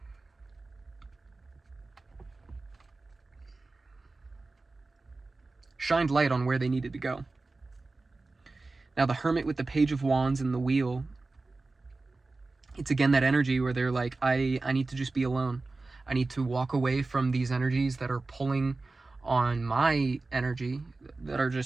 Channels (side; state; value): left; quieter; 3.5 dB